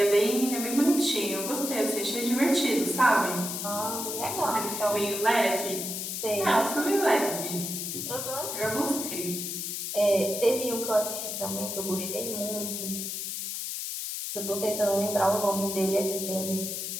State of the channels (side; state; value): left; noise; hiss, 4 dB below the sound